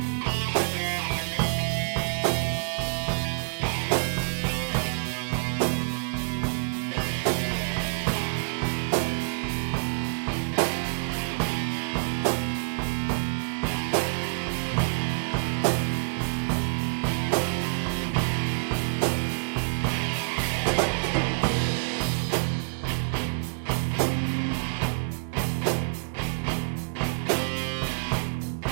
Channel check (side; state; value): left; silent; digital silence